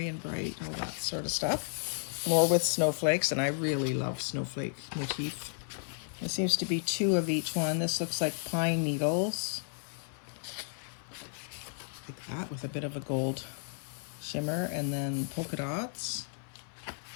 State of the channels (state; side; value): silent; right; 56 dB below the other